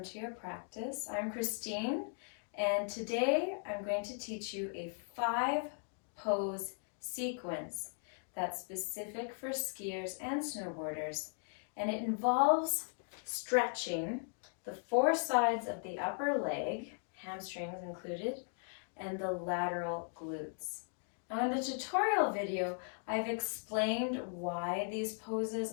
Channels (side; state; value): right; silent; 53 dB below the other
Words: to your practice. I'm Christine, and today I'm going to teach you a 5-pose sequence that's specific for skiers and snowboarders, and it involves stretching the 4 sides of the upper leg, hamstrings included, and the lateral glutes. Now in the tutorial video, I've explained why these poses